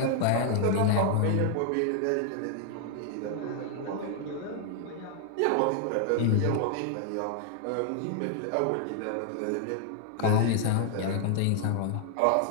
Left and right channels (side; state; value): both; different; correlation 0.00